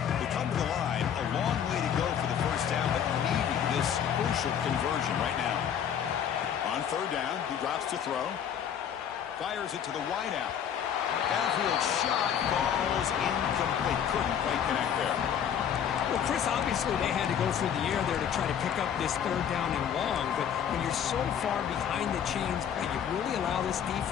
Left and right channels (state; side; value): quieter; right; 8.7 dB